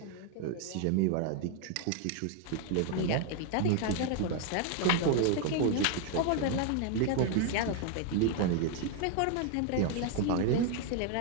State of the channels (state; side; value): different; both; correlation 0.01